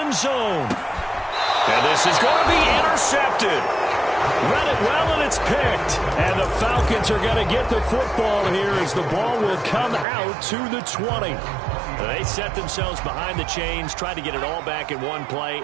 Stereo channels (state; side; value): drops out; left; at 10.1 s